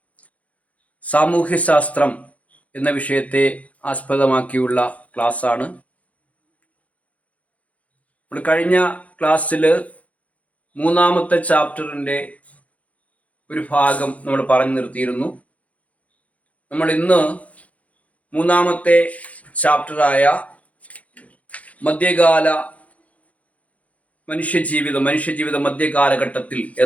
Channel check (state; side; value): late; right; 0.067 ms